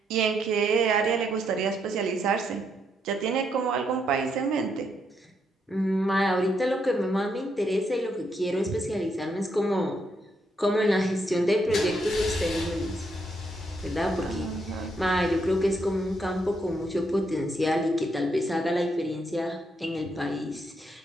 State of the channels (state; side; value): normal; both; correlation 0.77